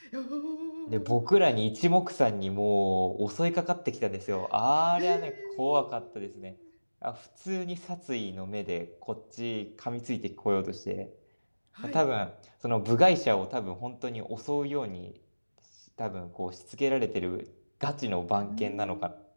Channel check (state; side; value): inverted; both; correlation -1.00